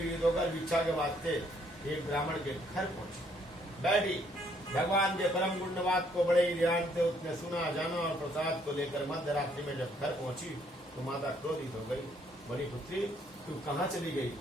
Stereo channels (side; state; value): both; normal; correlation 0.67